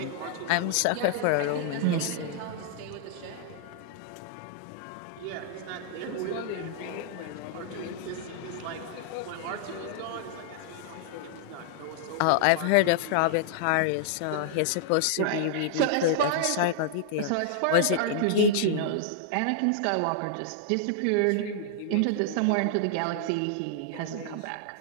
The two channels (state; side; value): different; both; correlation -0.01